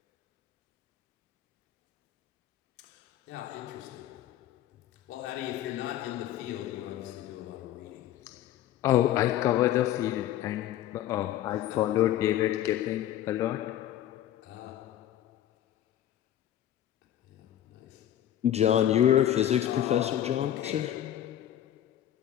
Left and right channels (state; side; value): quieter; right; 12.0 dB